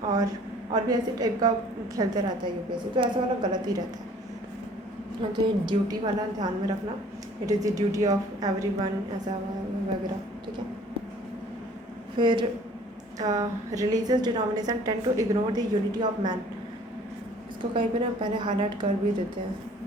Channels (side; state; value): both; normal; correlation 0.53